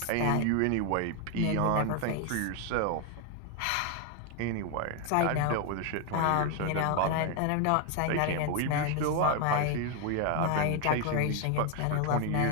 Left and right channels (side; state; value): both; different; correlation 0.01